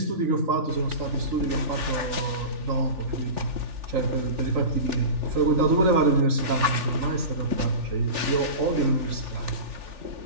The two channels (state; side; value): late; left; 3.4 ms